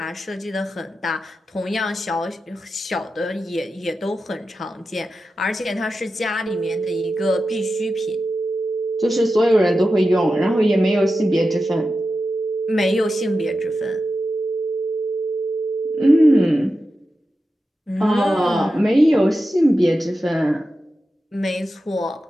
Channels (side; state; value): both; normal; correlation 0.91